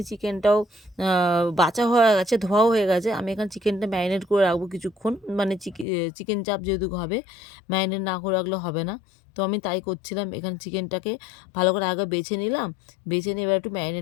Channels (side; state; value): right; drops out; at 5.9 s